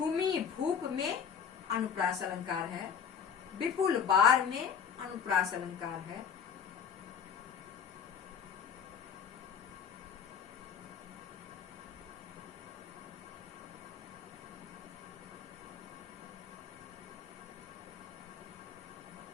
भूप में अनुप्रास अलंकार है। विपुल बार में अनुप्रास अलंकार है।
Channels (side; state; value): right; quieter; 7.4 dB